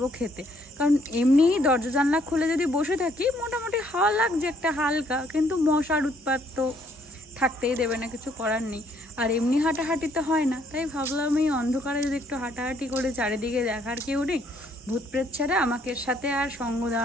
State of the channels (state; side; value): normal; both; correlation 0.67